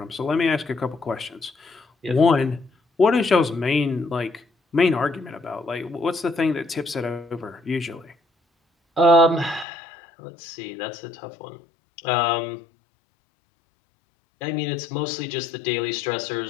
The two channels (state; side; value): drops out; right; at 9.7 s